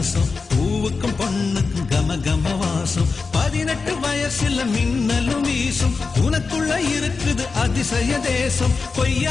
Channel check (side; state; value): right; quieter; 4.5 dB